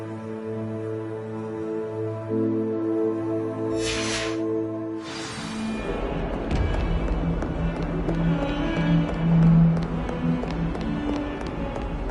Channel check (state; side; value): identical; both; correlation 1.00